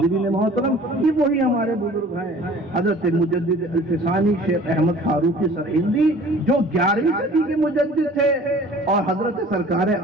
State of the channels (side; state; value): both; normal; correlation 0.48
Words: محترم، یہ وہی ہمارے بزرگ ہیں، حضرت مجدد الفسانی شیخ احمد فاروقی سرہندی جو 11ویں صدی کے مجدد تھے، اور حضرت سرکار